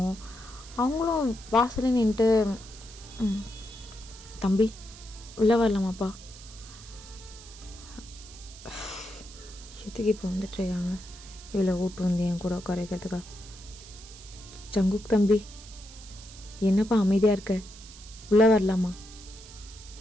அவங்களும் வாசலில் நின்றுட்டு தம்பி உள்ளே வரலாமாப்பா? எதுக்கு இப்போ வந்துட்டுருக்காங்க இவ்வளோ ஓட்டு வந்து என் கூட உட்காரக்கிறதுக்கா? ஜங்குக் தம்பி என்னப்பா அமைதியாக இருக்க? உள்ளே வரலாமா?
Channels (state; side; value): noise; right; hiss, 18 dB below the sound